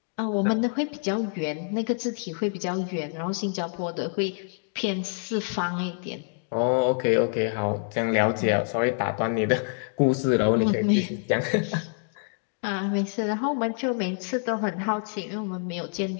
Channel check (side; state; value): right; silent; 55 dB below the other